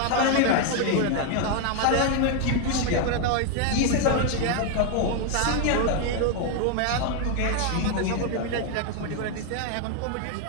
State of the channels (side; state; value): both; different; correlation 0.01